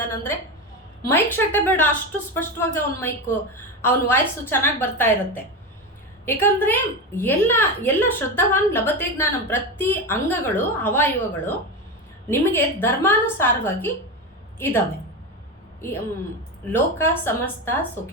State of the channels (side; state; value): both; normal; correlation 0.18